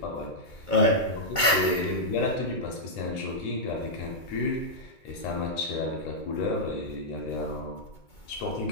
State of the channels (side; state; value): right; late; 2.2 ms